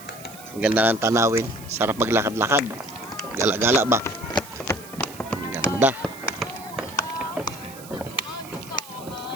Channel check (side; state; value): right; noise; hiss, 17 dB below the sound